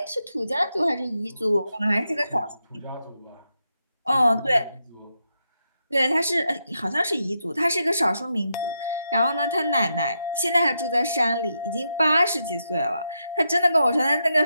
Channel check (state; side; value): inverted; both; correlation -0.84